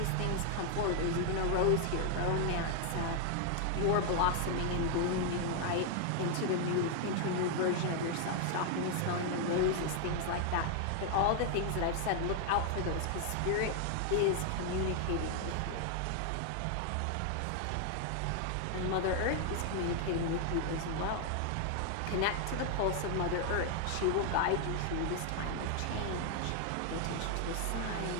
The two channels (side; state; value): both; different; correlation 0.00